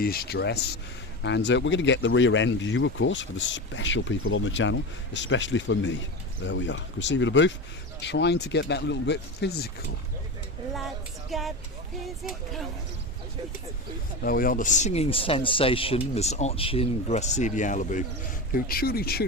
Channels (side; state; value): both; normal; correlation 0.23